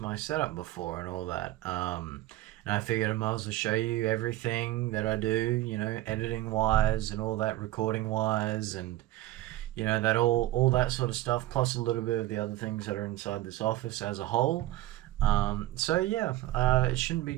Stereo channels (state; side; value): quieter; left; 15.9 dB